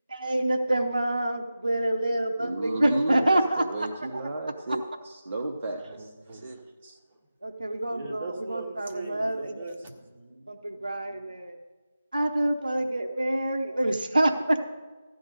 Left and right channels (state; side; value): inverted; both; correlation -0.93